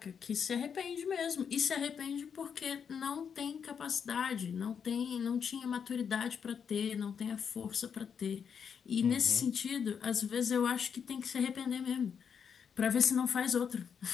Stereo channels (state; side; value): quieter; right; 7.1 dB